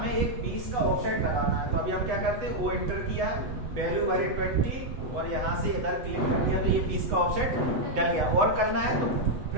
एक 20 का ऑफसेट लगाना है। तो अभी हम क्या करते हैं, वो एंटर किया, वैल्यू भरे 20 और यहाँ से इधर क्लिक कर दिया तो ये 20 का ऑफसेट डल गया। और करना है तो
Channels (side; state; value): left; late; 8.0 ms